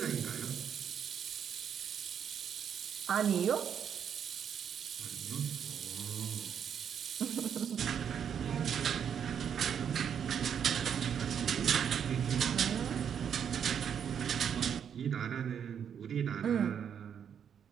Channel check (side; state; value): left; quieter; 8.1 dB